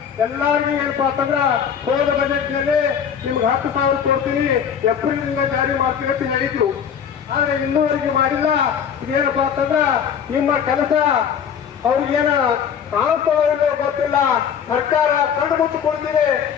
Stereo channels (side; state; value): right; quieter; 7.9 dB